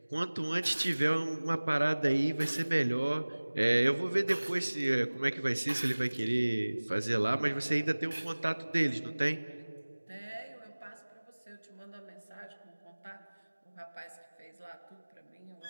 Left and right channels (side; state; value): both; inverted; correlation -1.00